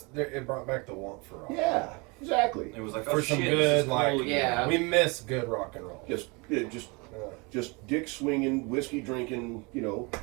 it brought back the want for rock. Yeah, exactly. It was like, For oh some shit, good, this is like- cool again. Yeah. We miss good rock and roll. Just dick swinging, whiskey drinking,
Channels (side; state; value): left; quieter; 28.4 dB